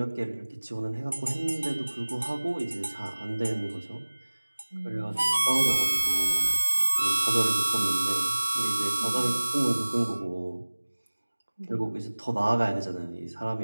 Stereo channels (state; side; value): inverted; both; correlation -1.00